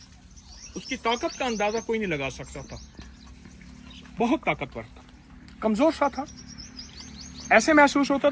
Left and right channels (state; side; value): identical; both; correlation 1.00